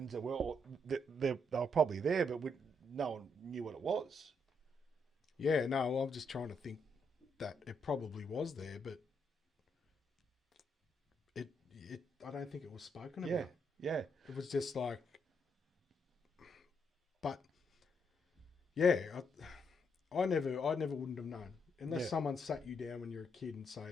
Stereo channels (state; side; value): normal; both; correlation 0.76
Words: that were they were probably there, but no one knew what it was. Yeah, no, I'm just trying to think that it probably was there, but it I don't think it was spoken about. Yeah. It was just like, but yeah, I never wouldn't have known. Unless someone sat you down when you're a kid and